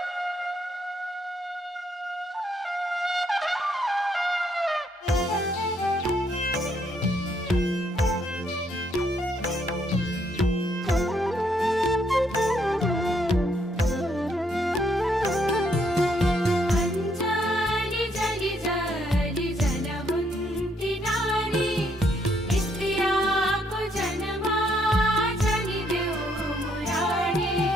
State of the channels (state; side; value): normal; both; correlation 0.72